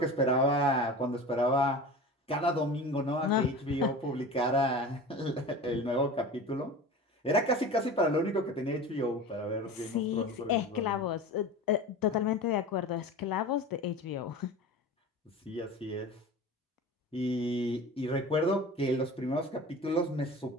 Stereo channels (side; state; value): both; normal; correlation 0.34